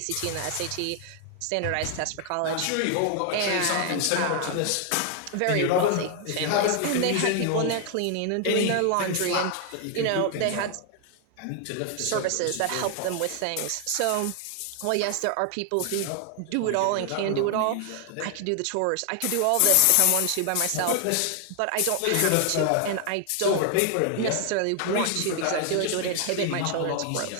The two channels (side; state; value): both; different; correlation 0.00